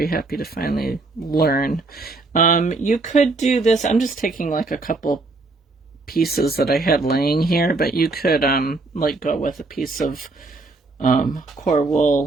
happy to finally learn. You could do this. I'm just taking like a couple pieces that I had laying here, but you could like go with a piece of core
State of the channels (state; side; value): quieter; left; 3.5 dB